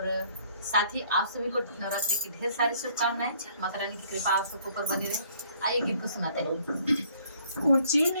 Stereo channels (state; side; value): inverted; both; correlation -0.61